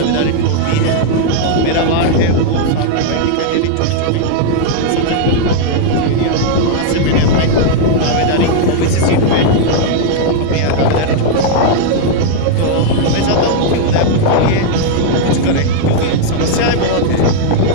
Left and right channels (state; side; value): different; both; correlation -0.01